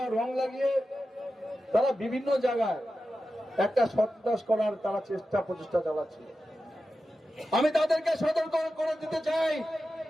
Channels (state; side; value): normal; both; correlation 0.92